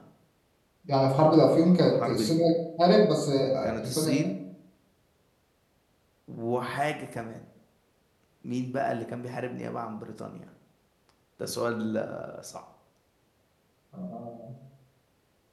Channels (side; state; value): both; identical; correlation 1.00